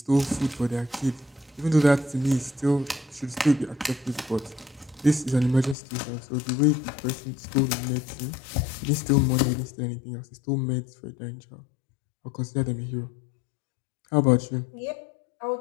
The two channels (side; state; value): right; drops out; at 5.8 s